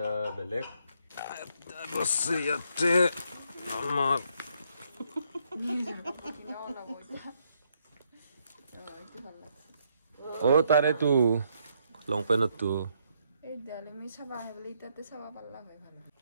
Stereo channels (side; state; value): both; inverted; correlation -0.73